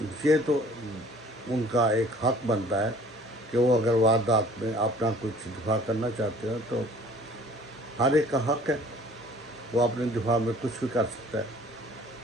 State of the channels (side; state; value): both; normal; correlation 0.52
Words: ये तो उनका एक हक बनता है कि वो अगर वारदात में अपना कुछ दिफा करना चाहते हैं तो हर एक का हक है, वो अपने दिफा में कुछ भी कर सकता है।